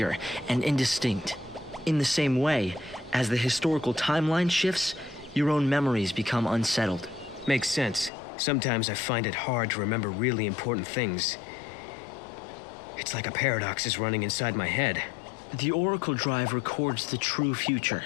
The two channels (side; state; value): right; drops out; at 8.1 s